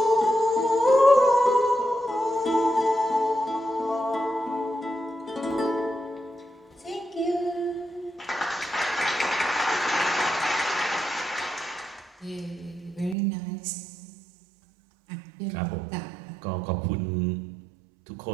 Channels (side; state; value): left; drops out; at 13.2 s